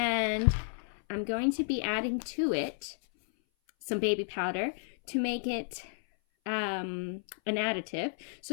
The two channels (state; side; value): silent; right; 56 dB below the other